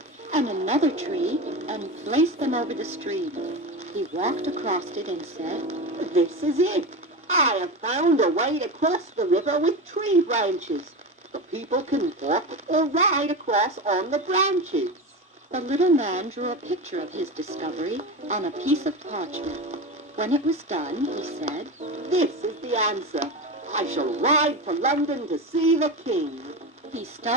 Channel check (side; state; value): both; normal; correlation 0.23